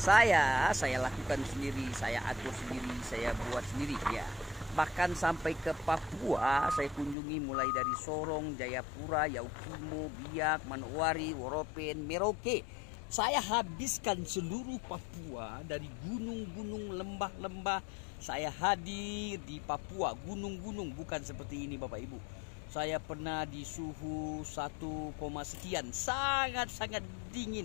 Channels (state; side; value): drops out; right; at 7.2 s